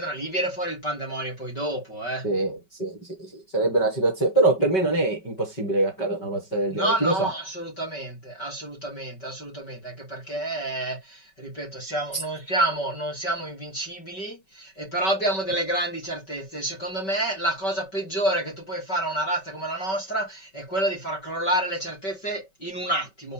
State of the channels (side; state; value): right; late; 5.2 ms